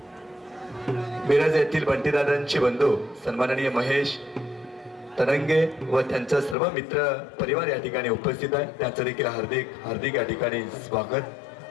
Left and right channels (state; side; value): drops out; right; at 6.6 s